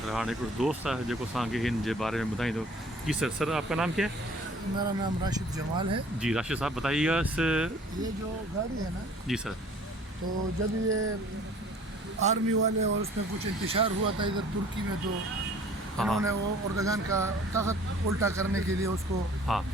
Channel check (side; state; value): both; normal; correlation 0.52